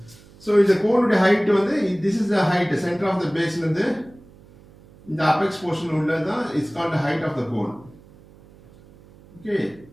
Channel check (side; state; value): right; noise; hum, 25 dB below the sound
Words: So the cone height வந்து this is the height, center of the base வந்து இந்த apex portion உள்ளதான் is called the height of the cone. Okay.